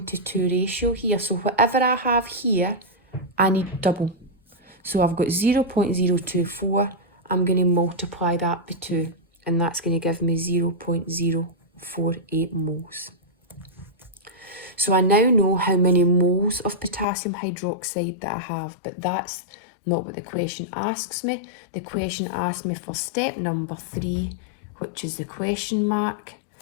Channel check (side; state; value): right; drops out; at 17.1 s